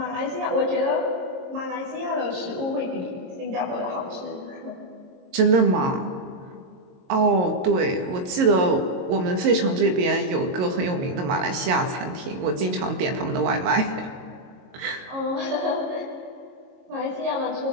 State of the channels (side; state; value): left; late; 22 ms